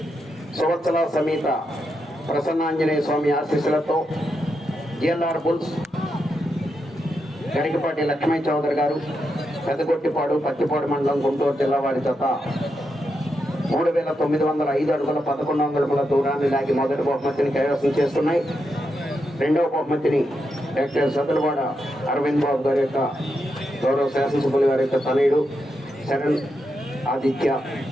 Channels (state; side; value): normal; both; correlation 0.84